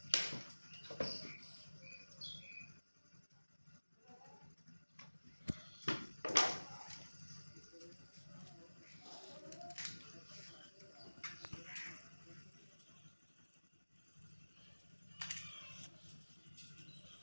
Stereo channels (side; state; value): both; inverted; correlation -1.00